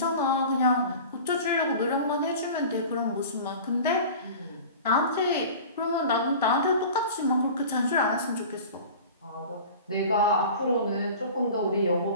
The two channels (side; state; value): both; inverted; correlation -0.38